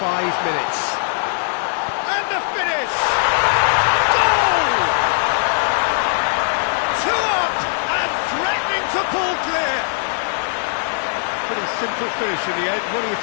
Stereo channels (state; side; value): silent; right; digital silence